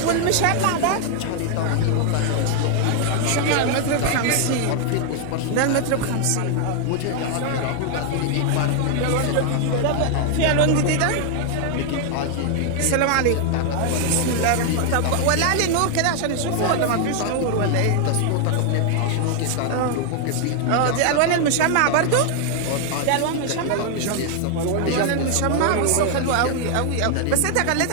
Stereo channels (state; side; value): different; both; correlation 0.00